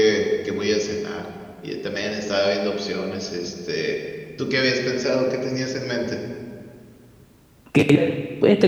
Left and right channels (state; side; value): identical; both; correlation 1.00